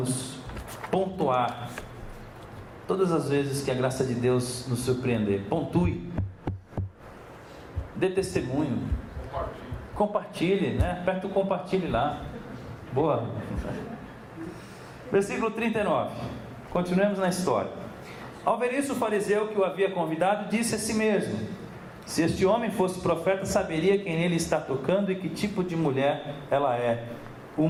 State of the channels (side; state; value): both; identical; correlation 1.00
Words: pontuar todas as vezes que a graça de Deus nos surpreender. Pontue, dê testemunho, compartilhe, né? Aperta o compartilhe lá. Boa. Versículo 39. Continuemos na história. Ao ver isso, o fariseu que o havia convidado disse a si mesmo: se este homem fosse profeta, saberia quem nele está tocando e que tipo de mulher ela é,